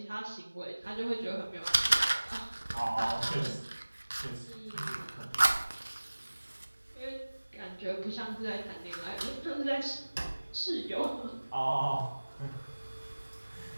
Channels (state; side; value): inverted; both; correlation -1.00